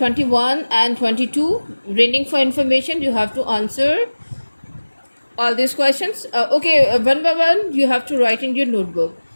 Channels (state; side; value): inverted; both; correlation -1.00